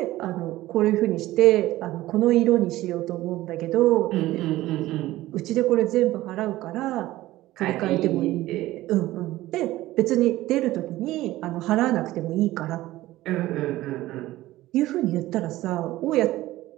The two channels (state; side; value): quieter; left; 16.5 dB